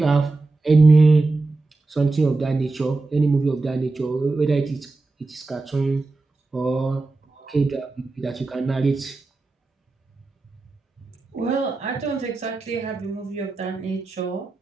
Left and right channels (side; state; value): left; quieter; 3.4 dB